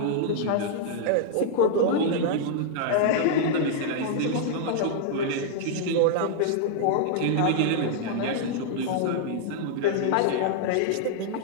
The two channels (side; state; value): both; different; correlation -0.01